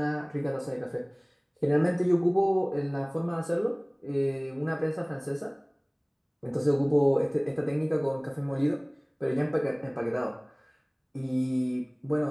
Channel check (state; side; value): identical; both; correlation 1.00